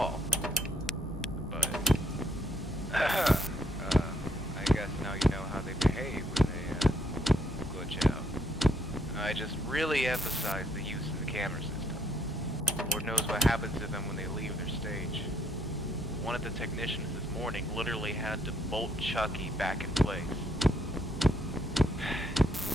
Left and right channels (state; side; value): normal; both; correlation 0.69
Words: But, I guess now you know how they behave when they, glitch out. I just really emphasize the use of the camera system. Lord knows what happens to them when they leave their stage. One of the technicians this morning literally had to bolt Chucky back in place.